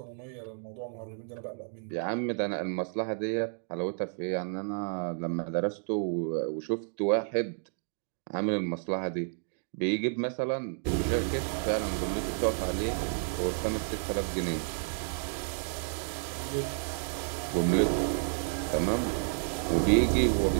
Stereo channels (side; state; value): left; silent; 57 dB below the other